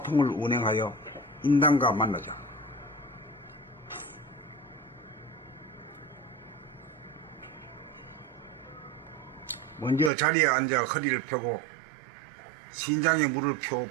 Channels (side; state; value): left; drops out; at 10.1 s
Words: 운행하여 인당과 만나자. 먼저 자리에 앉아 허리를 펴고 신장에 물을